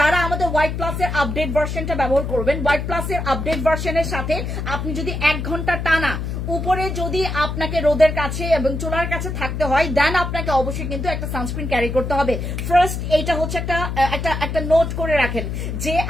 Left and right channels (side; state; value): left; noise; hum, 4 dB below the sound